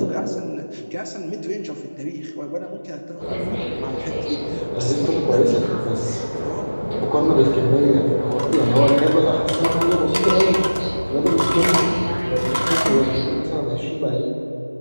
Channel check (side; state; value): both; inverted; correlation -1.00